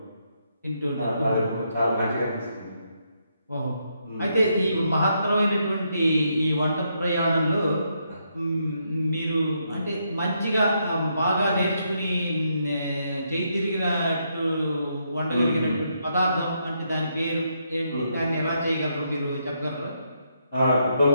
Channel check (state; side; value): inverted; both; correlation -0.78